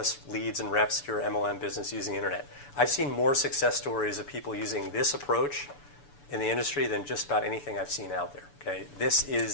leads and reps to your MLM business using the internet. I've seen more success stories of people using this approach in the industry than just about anything I've seen out there. Okay, this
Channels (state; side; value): late; right; 6.9 ms